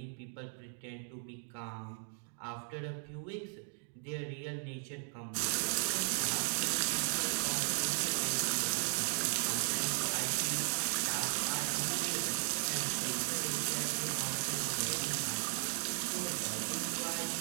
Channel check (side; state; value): left; silent; 53 dB below the other